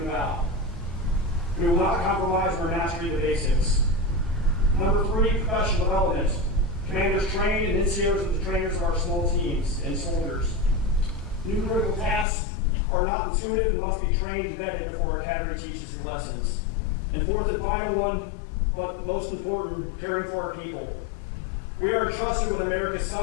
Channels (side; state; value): right; drops out; at 12.2 s